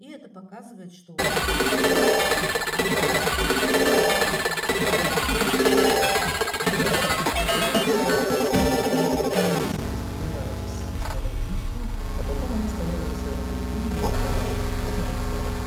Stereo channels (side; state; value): both; identical; correlation 1.00